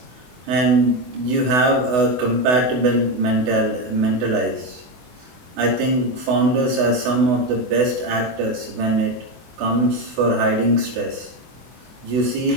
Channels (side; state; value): left; late; 24 ms